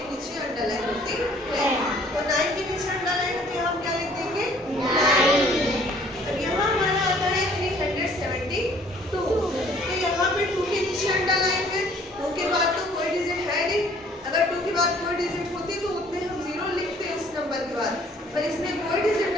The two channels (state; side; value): normal; both; correlation 0.57